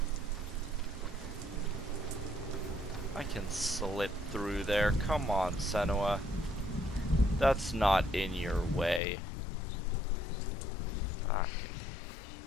it? I can slip through there. Come on, Senua. That's not in your way. Fucking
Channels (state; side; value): drops out; right; at 9.0 s